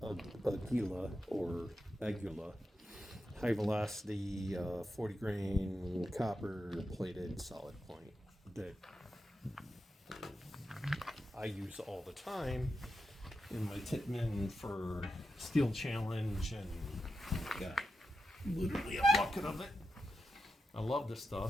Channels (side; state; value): both; normal; correlation 0.88